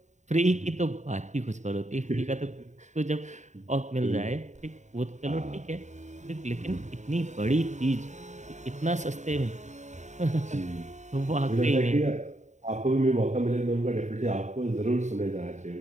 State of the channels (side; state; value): left; late; 0.34 ms